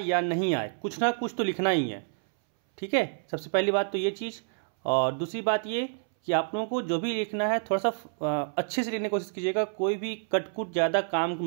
या नहीं आए कुछ ना कुछ तो लिखना ही है। ठीक है, सबसे पहली बात तो ये चीज़। और दूसरी बात ये कि आप लोगों को जो भी लिखना है थोड़ा सा अच्छे से लिखने की कोशिश कीजिएगा। कोई भी कटकुट ज़्यादा काम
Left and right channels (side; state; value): left; silent; 59 dB below the other